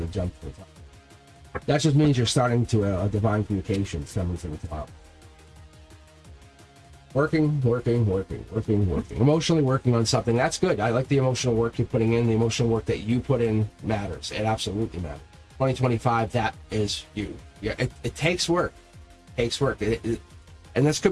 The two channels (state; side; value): identical; both; correlation 1.00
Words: the jump to the top. That just means you're starting to a divine communication coming to the top. Working. Emotionally working on something. That's good. I like the emotional work you're putting in. The emotional work that you put in matters. It absolutely matters. 2025, that is you. Yeah, it takes work. And this